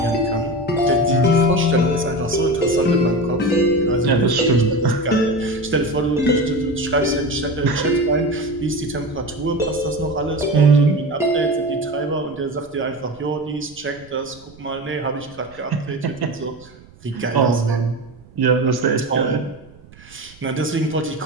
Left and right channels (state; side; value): noise; right; rumble, 24 dB below the sound